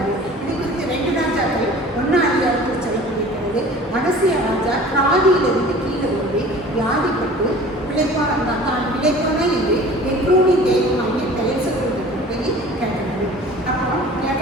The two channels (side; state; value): both; normal; correlation 0.44